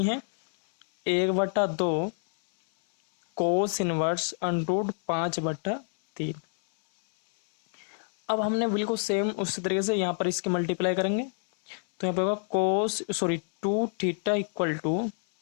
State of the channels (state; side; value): silent; right; 60 dB below the other